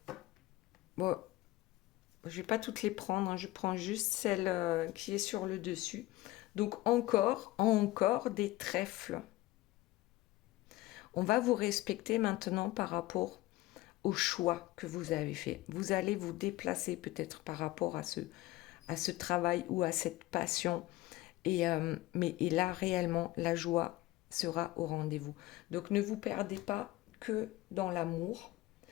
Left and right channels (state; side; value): quieter; right; 17.8 dB